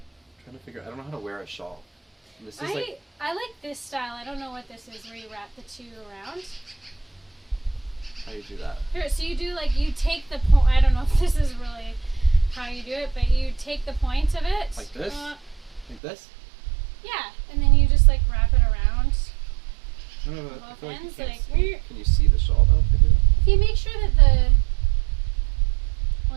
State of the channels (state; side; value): drops out; left; at 16.0 s